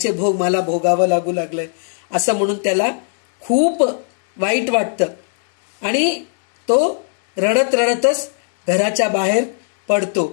भोग मला भोगावं लागू लागलंय असं म्हणून त्याला खूप वाईट वाटतं. आणि तो रडत रडतच घराच्या बाहेर पडतो.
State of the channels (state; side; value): silent; right; 68 dB below the other